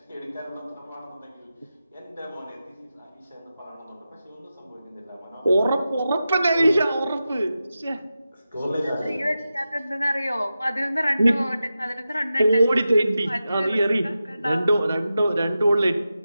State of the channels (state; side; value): inverted; both; correlation -0.92